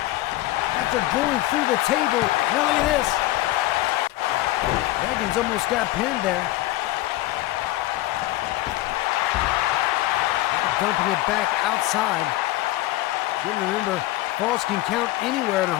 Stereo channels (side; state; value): right; quieter; 17.1 dB